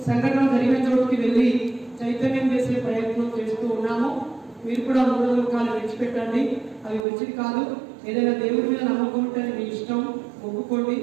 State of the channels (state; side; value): drops out; left; at 7.1 s